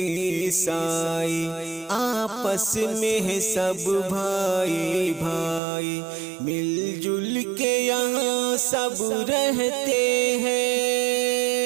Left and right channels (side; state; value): left; drops out; at 5.6 s